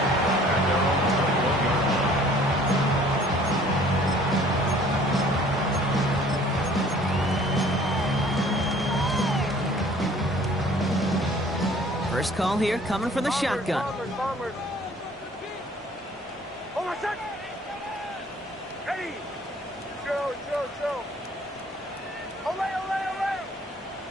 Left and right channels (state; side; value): normal; both; correlation 0.54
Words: First call here coming from the shotgun. Bombers. Hold on, set. Ready. Show. Olay.